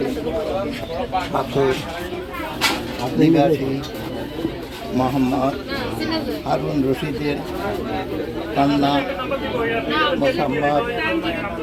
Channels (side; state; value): both; identical; correlation 1.00